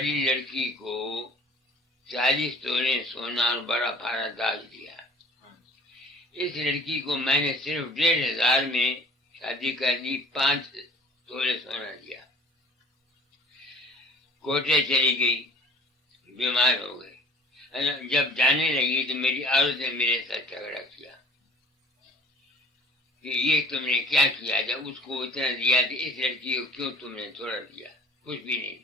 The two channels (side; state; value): both; normal; correlation 0.50